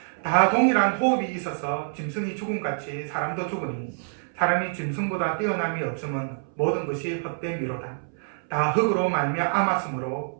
다 동일한 호흡이 있어서 짐승이 죽음같이 사람도 죽으니 사람이 짐승보다 뛰어남이 없음은 모든 것이 헛됨이로다. 다 흙으로 말미암았으므로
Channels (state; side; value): silent; left; 61 dB below the other